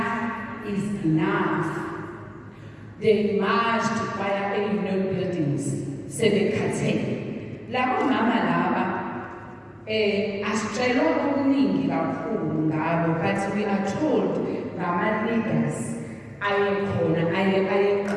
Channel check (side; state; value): both; identical; correlation 1.00